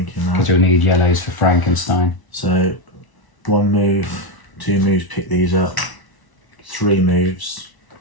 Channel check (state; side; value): late; right; 1.0 ms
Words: because that. you'll need yellows for Frankenstein. So 1 move, 2 moves, pick these up. 3 moves